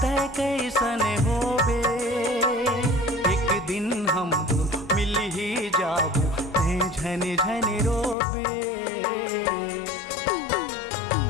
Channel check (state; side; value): drops out; right; at 8.2 s